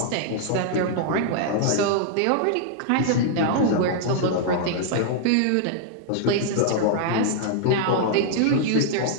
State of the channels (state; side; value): different; both; correlation -0.01